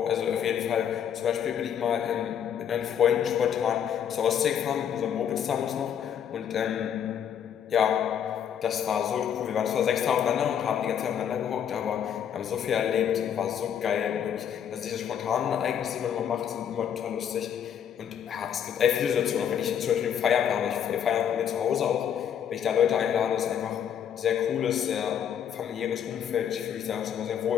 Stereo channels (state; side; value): quieter; right; 8.8 dB